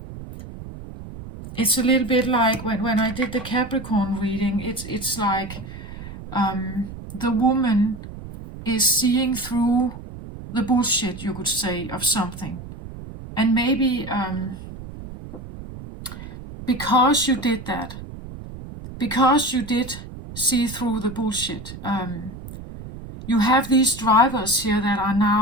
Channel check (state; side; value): noise; right; rumble, 13 dB below the sound